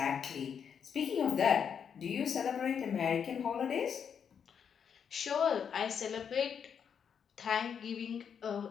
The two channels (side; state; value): right; quieter; 7.4 dB